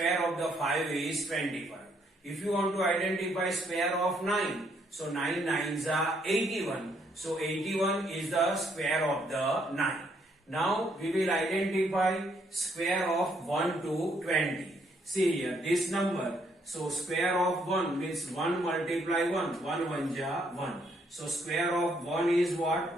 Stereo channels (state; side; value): normal; both; correlation 0.71